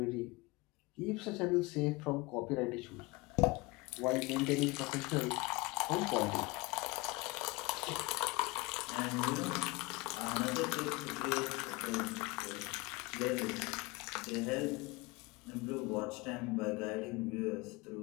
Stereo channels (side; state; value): right; quieter; 24.2 dB